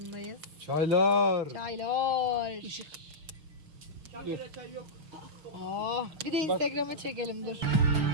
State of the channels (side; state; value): left; late; 6.0 ms